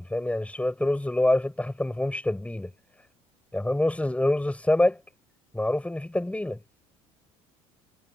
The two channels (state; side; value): normal; both; correlation 0.98